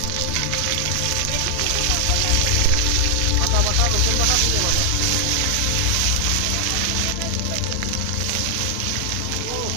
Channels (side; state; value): both; different; correlation 0.00